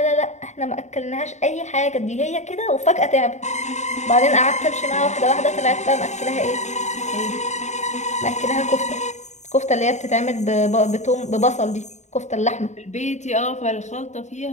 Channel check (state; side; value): late; right; 0.34 ms